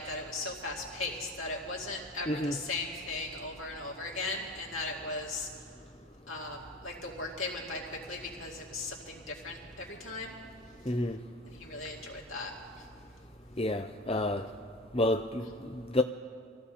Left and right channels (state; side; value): normal; both; correlation 0.34